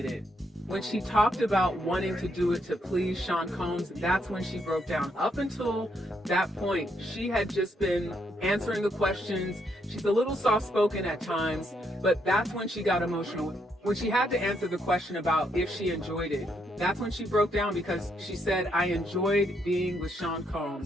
it. When she talked about wanting to do it to please Sean Combs, that's when she broke down. Up until that point, she had just been answering the questions. She's a little soft-spoken at times, but that's when she got emotional. When she had to answer the question about if she enjoyed it, that's when she broke down, because she said, I enjoyed being with Sean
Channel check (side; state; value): both; normal; correlation 0.76